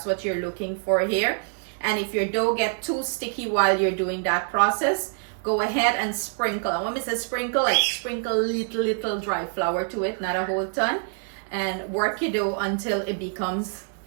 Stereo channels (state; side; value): silent; left; 61 dB below the other